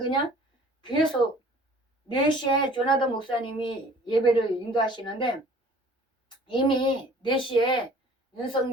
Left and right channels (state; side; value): normal; both; correlation 0.50